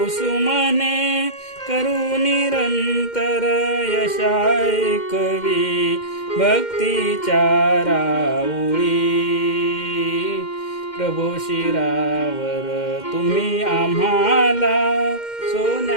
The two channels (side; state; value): right; late; 2.1 ms